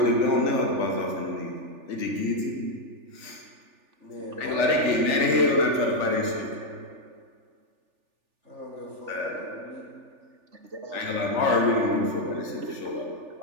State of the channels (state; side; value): late; left; 3.4 ms